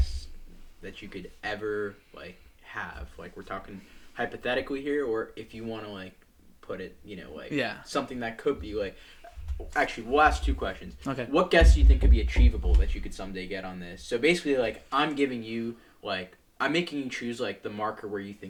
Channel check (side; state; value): both; identical; correlation 1.00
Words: that you could ever like have? Like we're talking hypothetically here, or if you want to like put it, something that could be like. Actually, we'll ask 2 questions. Okay. What guests do you think could be achievable that you could someday get on this? So basically, like I'm giving you I'm making you choose like the marker where you